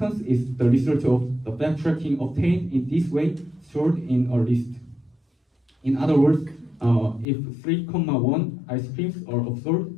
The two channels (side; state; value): right; drops out; at 7.2 s